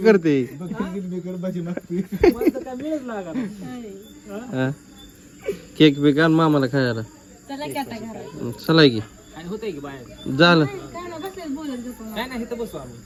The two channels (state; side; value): identical; both; correlation 1.00